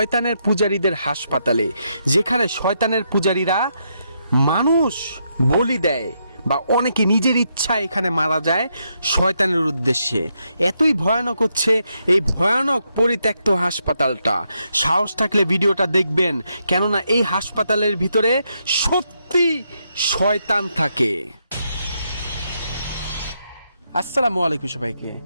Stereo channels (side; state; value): both; inverted; correlation -0.79